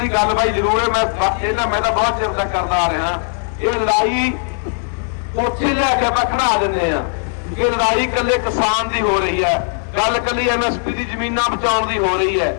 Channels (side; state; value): right; silent; 56 dB below the other